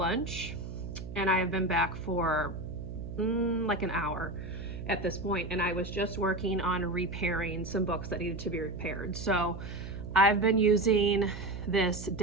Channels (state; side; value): noise; right; hum, 9 dB below the sound